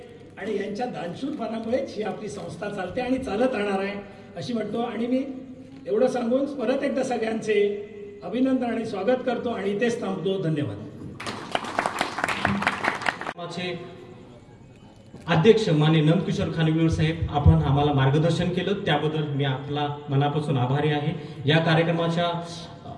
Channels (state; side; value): identical; both; correlation 1.00